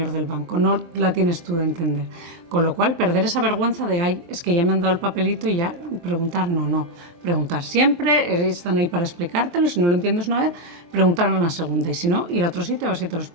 del banco, no la tienes tú de entender. Con lo cual, perder esa vergüenza de, ay, es que ya me han dado el papelito y ya preguntar, no. Preguntar siempre, están ahí para explicártelo, si no lo entiendes una vez, preguntar una segunda y si no, ir a otro sitio a ver si te lo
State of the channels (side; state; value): left; late; 23 ms